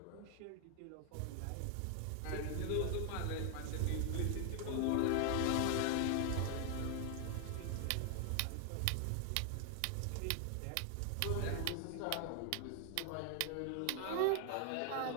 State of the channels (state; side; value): different; both; correlation 0.00